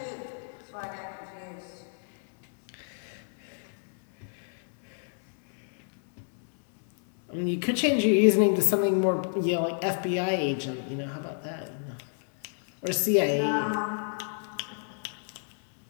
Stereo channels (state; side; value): silent; right; 57 dB below the other